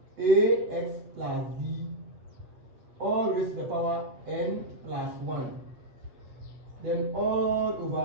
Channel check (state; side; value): late; left; 7.9 ms